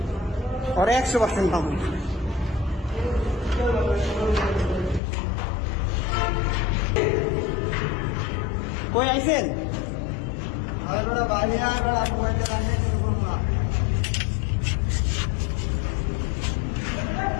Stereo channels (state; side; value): drops out; right; at 5.0 s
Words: ওরা 100% পাবো কই আইছেন